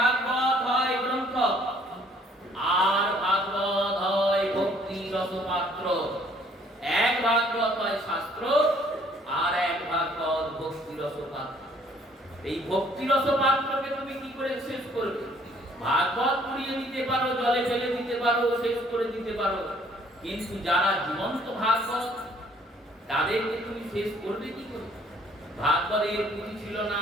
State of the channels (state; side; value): normal; both; correlation 0.61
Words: হয় গ্রন্থ, আর ভাগবত হয় ভক্তি রসপাত্র। এক ভাগবত হয় শাস্ত্র, আর এক ভাগবত ভক্তি রসপাত্র। এই ভক্তি রসপাত্রকে তুমি কি করে শেষ করবে? ভাগবত পুড়িয়ে দিতে পারো, জলে ফেলে দিতে পারো, শেষ করে দিতে পারো, কিন্তু যারা জীবন্ত ভাগবত তাদেরকে তুমি শেষ করবে কি করে? ভাগবতের পুঁথি ছিল না,